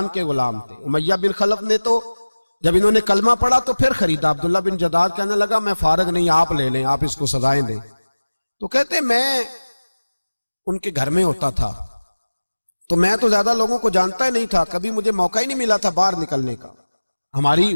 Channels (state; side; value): inverted; both; correlation -1.00